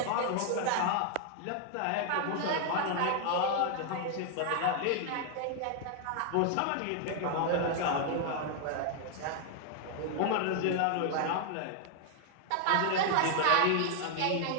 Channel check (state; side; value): different; both; correlation 0.00